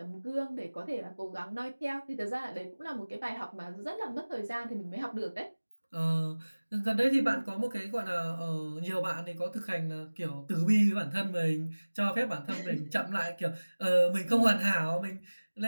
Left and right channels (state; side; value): inverted; both; correlation -1.00